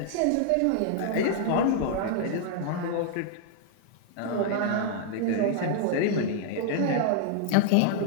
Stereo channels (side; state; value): both; different; correlation -0.01